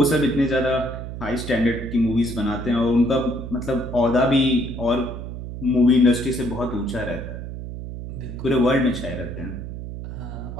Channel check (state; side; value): noise; right; hum, 8 dB below the sound